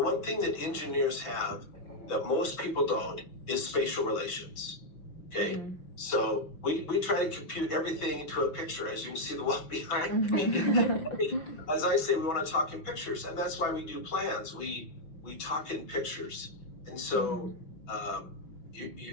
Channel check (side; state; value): right; late; 5.9 ms